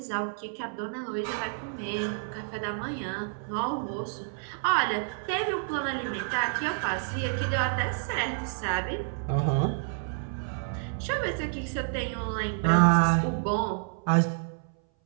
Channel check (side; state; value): left; silent; 58 dB below the other